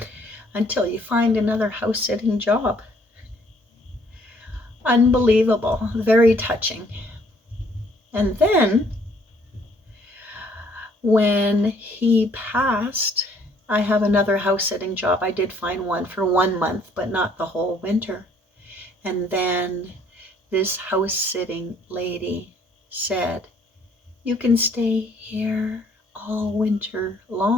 until you find another house sitting job. Unbelievable, very touching. And then when he passed, I have another house sitting job. I did find one for 1 month, but not the whole winter. And then this house sitting lady said, you can stay here all winter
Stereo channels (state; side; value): normal; both; correlation 0.63